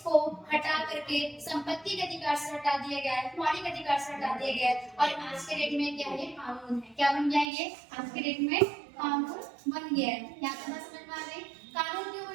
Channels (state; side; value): drops out; left; at 7.5 s